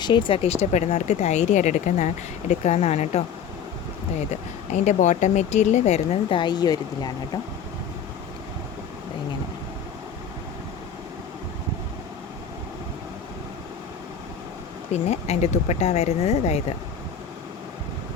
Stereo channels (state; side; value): quieter; right; 7.4 dB